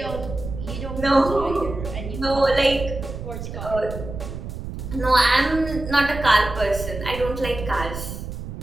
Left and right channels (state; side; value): noise; right; rumble, 8 dB below the sound